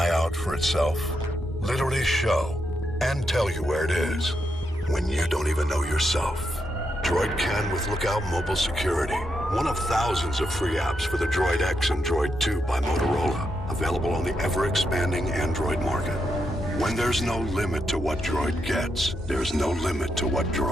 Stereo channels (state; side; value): normal; both; correlation 0.82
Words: out for itself? Literally show and tell you where it is when you don't even know yourself. Droid can with Lookout Mobile Security. One of thousands of free apps for the Droid X and Droid 2 by Motorola. Available on the ever-expanding Android market. When there's no limit to what Droid gets, there's no limit to what